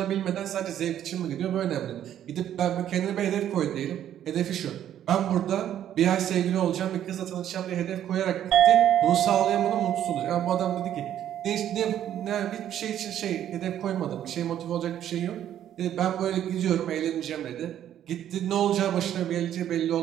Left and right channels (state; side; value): quieter; left; 10.8 dB